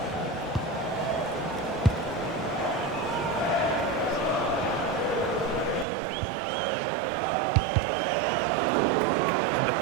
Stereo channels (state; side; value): drops out; left; at 5.9 s